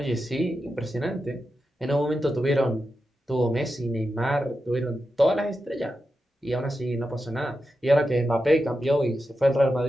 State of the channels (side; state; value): both; normal; correlation 0.89